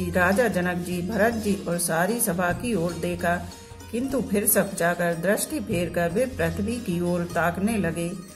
राजा जनक जी, भरत जी और सारी सभा की ओर देखा, किंतु फिर सकुचाकर दृष्टि फेर कर वे पृथ्वी की ओर ताकने लगे।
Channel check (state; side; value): identical; both; correlation 1.00